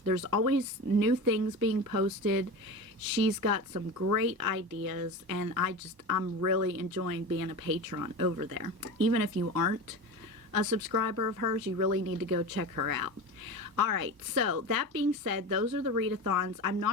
There's always new things being posted. She's got some great ideas, and I'm really enjoying being a patron over there. Even if you aren't a subscriber of hers, you really need to go check her out. Alright, so that being said, those are the readathons. I'm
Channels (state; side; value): late; left; 1.0 ms